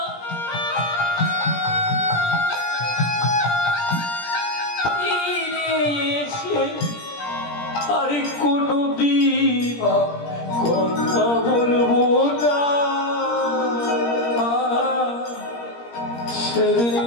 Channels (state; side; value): late; right; 17 ms